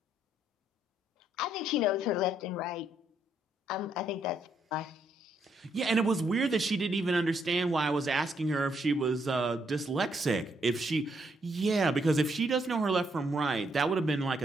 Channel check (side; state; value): both; normal; correlation 0.74